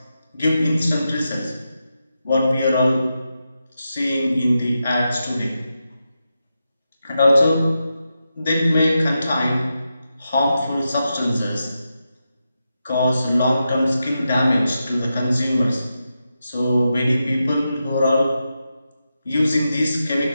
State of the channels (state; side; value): inverted; both; correlation -0.88